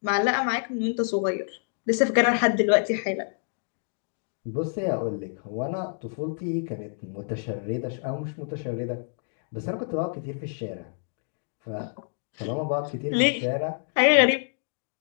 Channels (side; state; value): right; silent; digital silence